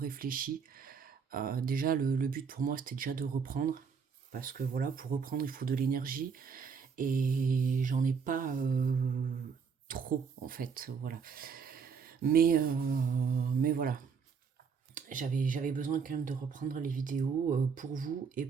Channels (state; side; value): quieter; left; 6.0 dB